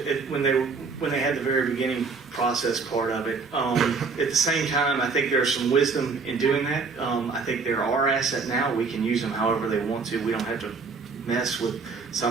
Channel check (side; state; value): left; quieter; 4.6 dB